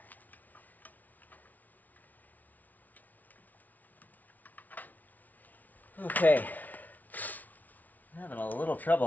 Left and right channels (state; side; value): late; right; 0.077 ms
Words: Okay. I'm having a little